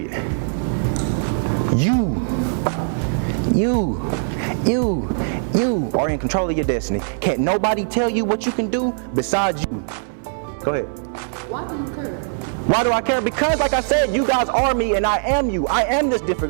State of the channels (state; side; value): silent; left; 65 dB below the other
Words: You are in control of your destiny. Can't nobody tell you what you can do besides you. Go ahead. Why do you care? Why do I care? Because like I said, you guys are me and I am you. I am this